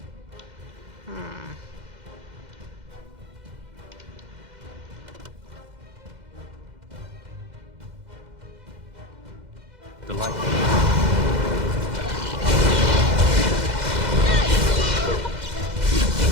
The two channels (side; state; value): left; late; 2.0 ms